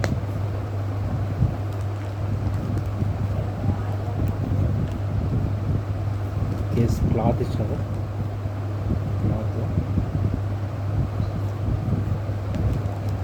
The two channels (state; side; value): identical; both; correlation 1.00